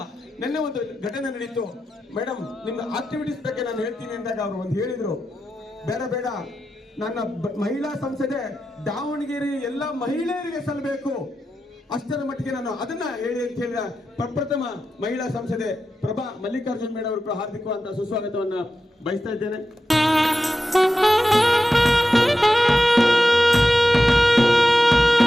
ನಿನ್ನೆ ಒಂದು ಘಟನೆ ನಡೀತು. ಮೇಡಮ್, ನಿಮ್ಮ ಆಕ್ಟಿವಿಟೀಸ್ ಬಗ್ಗೆ ನಾನು ಹೇಳ್ತೀನಿ ಅಂದಾಗ ಅವರು ಒಂದು ಹೇಳಿದ್ರು, ಬೇಡ ನನ್ನ ಮಹಿಳಾ ಸಂಸದೆ ದಾವಣಗೆರೆ ಎಲ್ಲ ಮಹಿಳೆಯರಿಗೆ ಸಲ್ಲಬೇಕು, ಅಷ್ಟರ ಮಟ್ಟಿಗೆ ನಾನು ಅದನ್ನ ಹೇಳಿ ಅಂತ ಹೇಳಿದ ಪ್ರಪ್ರಥಮ ಮಹಿಳಾ ಸಂಸದೆ ಪ್ರಭಾ ಮಲ್ಲಿಕಾರ್ಜುನ್ ಮೇಡಮ್ ಅವರು ಕೂಡ ಹಾರ್ದಿಕವಾದ ಸುಸ್ವಾಗತವನ್ನ ಬಯಸ್ತಾ ಇದ್ದೇನೆ.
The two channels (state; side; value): normal; both; correlation 0.91